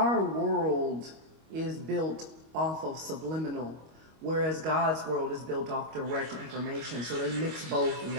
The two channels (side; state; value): left; late; 25 ms